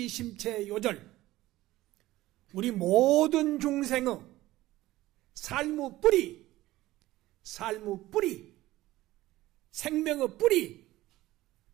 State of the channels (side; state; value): left; quieter; 16.8 dB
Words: 요절, 우리 모든 중생의 삶의 뿌리, 생명의 뿌리,